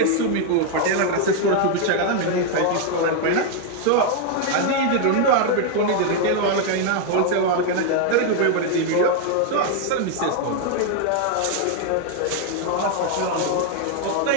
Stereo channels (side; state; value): both; different; correlation 0.00